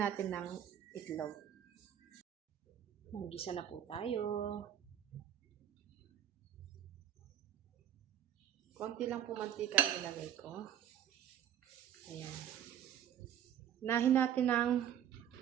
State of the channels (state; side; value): quieter; left; 10.1 dB